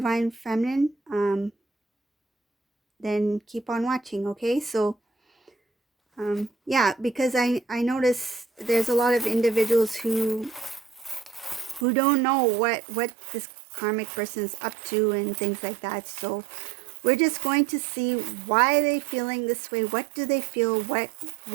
feminine, then keep on watching. Okay, so yeah, because I notice there's a lot of individuals who don't know what this karmic person is up to and things like that. So we're just going to see why they feeling this way. What do they feel? What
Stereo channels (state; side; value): drops out; left; at 11.9 s